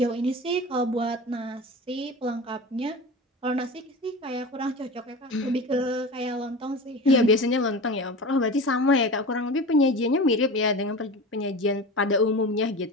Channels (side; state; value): both; normal; correlation 0.31